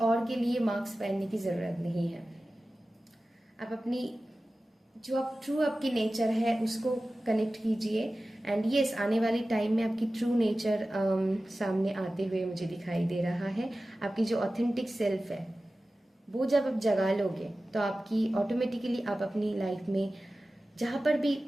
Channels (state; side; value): normal; both; correlation 0.96